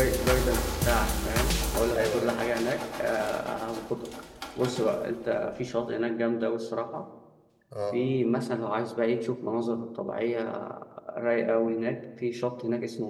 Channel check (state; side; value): identical; both; correlation 1.00